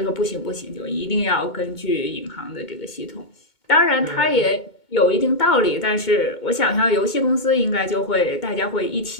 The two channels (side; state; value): right; late; 2.2 ms